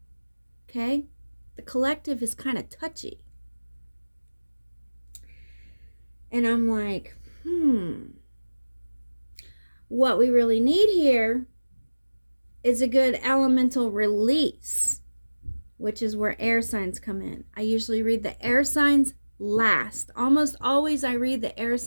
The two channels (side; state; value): both; inverted; correlation -1.00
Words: Okay? The collective is kind of touchy. And I'm like, what we really need here is a good elemental release, which is where air signs come in. I usually read the air signs last. Almost always I read the air